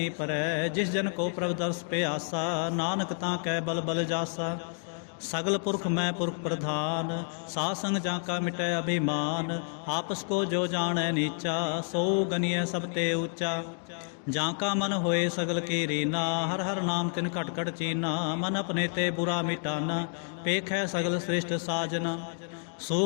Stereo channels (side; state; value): right; silent; 58 dB below the other